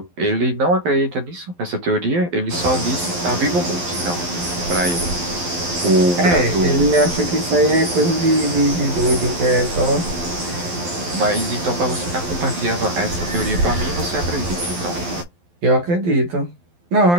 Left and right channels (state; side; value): late; left; 12 ms